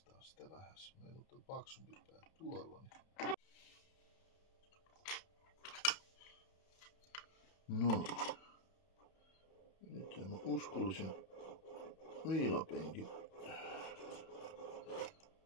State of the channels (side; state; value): right; late; 30 ms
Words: sitä vähän. Meillä on paksumpi pää tuolla. No. Nyt mä uskollisen viilapenkin.